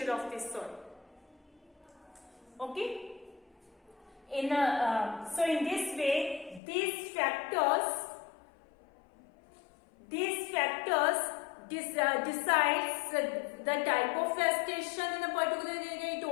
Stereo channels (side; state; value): right; drops out; at 6.6 s